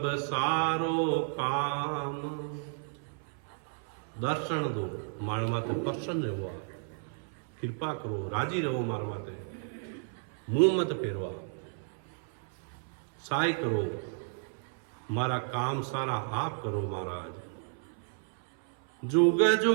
सारो काम। दर्शन दो मार माते प्रसन्न रहो, कृपा करो, राजी रहो मार माते, मुंह मत फेरवा। सहाय करो, मारा काम सारा आप करो महाराज। जुग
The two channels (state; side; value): silent; left; 56 dB below the other